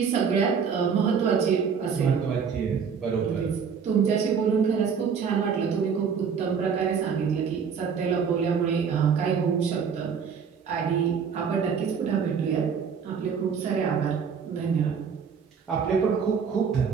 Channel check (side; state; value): left; quieter; 6.5 dB